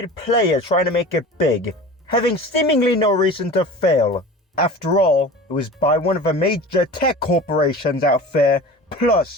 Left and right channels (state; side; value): normal; both; correlation 0.37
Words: player trying to make it big, having seemingly no reason to fail. After all, it was by one of the major tech corporations out there,